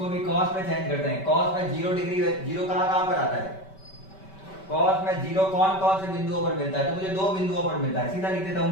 भी cos में चेंज करते हैं। cos में 0 डिग्री, 0 कहां पर आता है, cos में 0 कौन कौन से बिंदुओं पर मिलता है, तो मुझे 2 बिंदुओं पर मिलता है, सीधा लिख देता हूं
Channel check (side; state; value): right; late; 5.2 ms